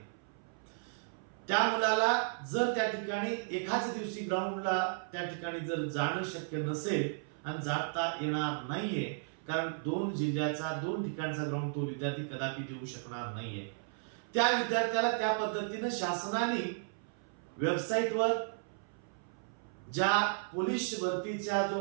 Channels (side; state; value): left; silent; 55 dB below the other